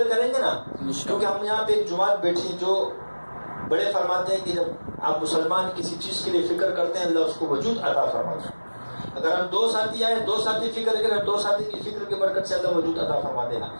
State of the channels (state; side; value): inverted; both; correlation -1.00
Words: کریں گے نا، کیونکہ ہم یہاں پہ ایک جماعت بیٹھی جو بڑے فرماتے ہیں کہ جب آپ مسلمان کسی چیز کے لیے فکر کرتے ہیں اللہ اس کو وجود عطا فرماتا ہے۔ اگر ہم 2 ساتھی آئے، 2 ساتھی فکر کریں، 2 ساتھی کی فکر کی برکت سے اللہ وجود عطا فرما دے گا۔